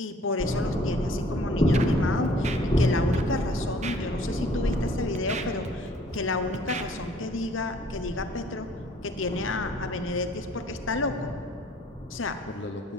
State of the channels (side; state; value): both; normal; correlation 0.56